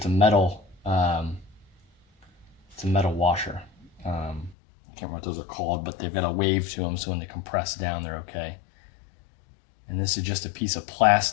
a metal washer. I can't remember what those are called, but they've got a wave to them, so when they compress down, they're okay. And this is just a piece of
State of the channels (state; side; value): drops out; right; at 4.5 s